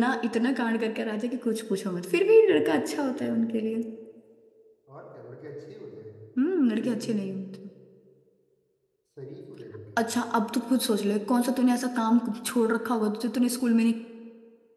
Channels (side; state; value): both; identical; correlation 1.00